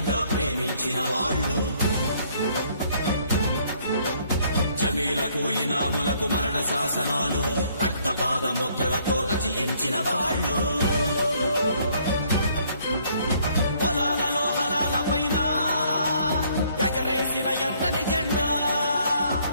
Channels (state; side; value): inverted; both; correlation -0.65